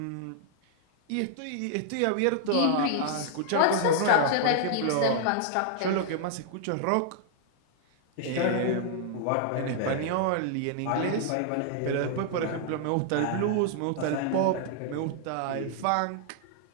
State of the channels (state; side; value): different; both; correlation -0.01